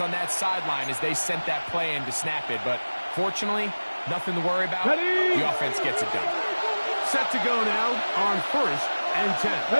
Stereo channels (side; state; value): both; inverted; correlation -1.00